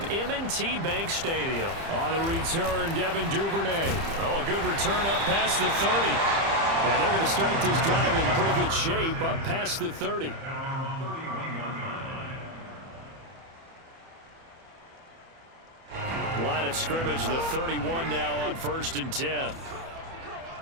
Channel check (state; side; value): late; left; 30 ms